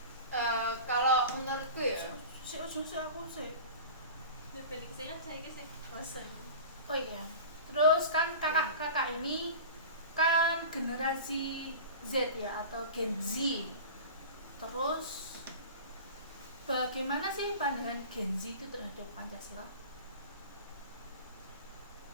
Kalau menurutku ya, Oh iya, terus kan kakak ini kan generasi Z ya, atau Gen Z. Terus bagaimana sih pandangan Gen Z itu terhadap Pancasila?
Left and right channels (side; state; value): both; inverted; correlation -0.35